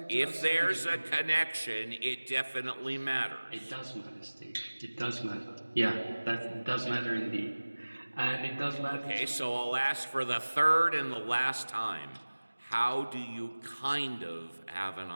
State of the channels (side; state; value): both; inverted; correlation -1.00